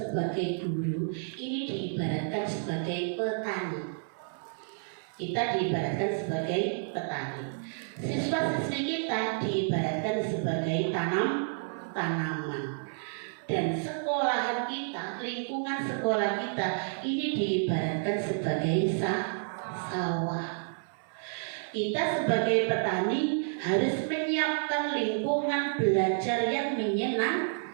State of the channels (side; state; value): left; silent; 58 dB below the other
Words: guru ini diibaratkan sebagai petani. Kita diibaratkan sebagai petani. Siswa-siswi kita diibaratkan sebagai tanaman. Dan sekolahan kita, lingkungan sekolah kita ini diibaratkan sebagai sawah. Kita sebagai petani harus menyiapkan lingkungan belajar yang